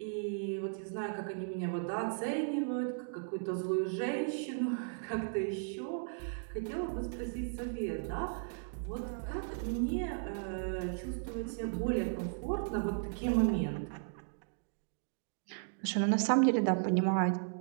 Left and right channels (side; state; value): left; silent; digital silence